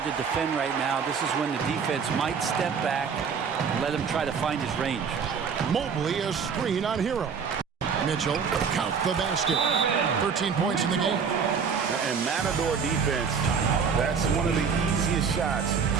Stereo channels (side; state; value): left; quieter; 6.2 dB